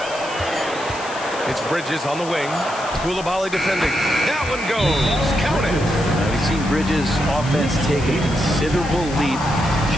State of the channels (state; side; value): noise; left; hiss, 15 dB below the sound